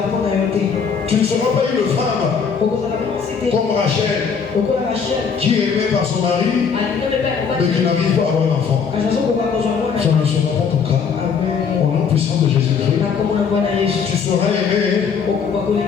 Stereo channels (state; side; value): quieter; right; 6.2 dB